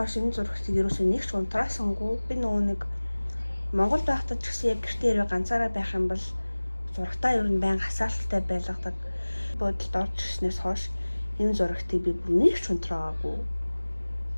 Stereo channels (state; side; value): inverted; both; correlation -1.00